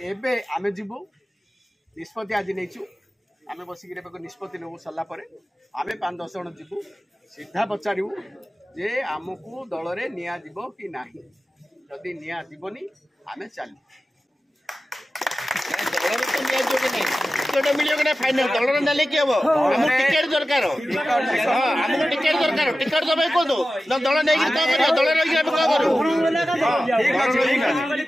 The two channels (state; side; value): normal; both; correlation 0.94